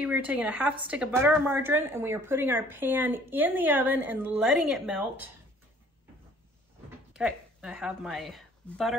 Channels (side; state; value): both; normal; correlation 0.55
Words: we're taking a half stick of butter or margarine and we are putting our pan in the oven and letting it melt. Okay, I have my